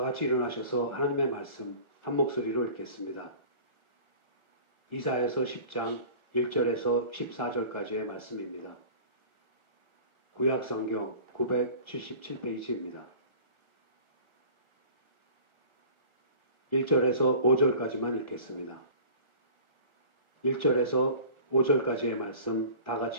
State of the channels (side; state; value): left; late; 1.4 ms